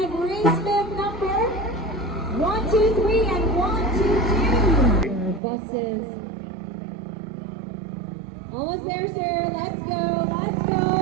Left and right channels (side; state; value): left; drops out; at 5.4 s